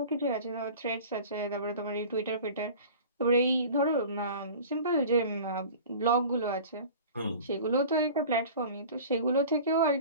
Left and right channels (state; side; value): inverted; both; correlation -0.40